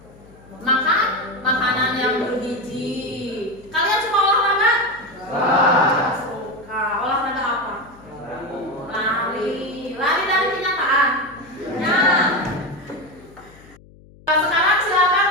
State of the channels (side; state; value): left; noise; hum, 24 dB below the sound